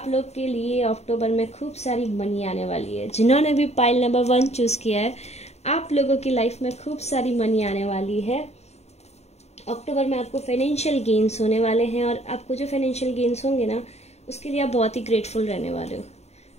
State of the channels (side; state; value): right; late; 0.31 ms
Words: लोग के लिए अक्टूबर में खूब सारी मनी आने वाली है। जिन्होंने भी पाइल नंबर 1 चूज़ किया है, आप लोगों की लाइफ में खूब सारी मनी आने वाली है। अक्टूबर में आपको फाइनेंशियल गेन्स होने वाले हैं और आपको जो फाइनेंशियल गेन्स होंगे ना, उसके लिए आप बहुत ही ग्रेटफुल रहने वाले हो।